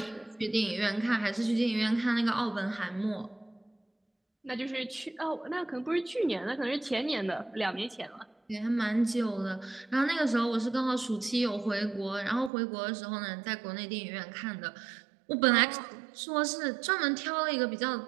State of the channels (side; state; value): left; drops out; at 12.5 s